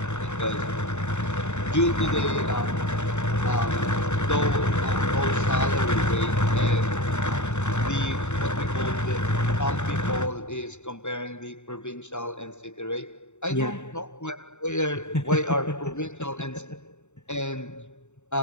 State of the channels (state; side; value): late; right; 0.83 ms